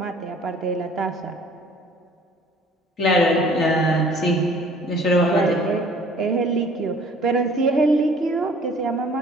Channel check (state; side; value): normal; both; correlation 0.53